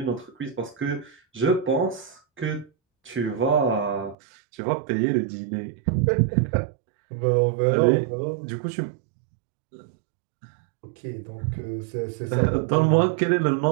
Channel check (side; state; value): left; drops out; at 4.2 s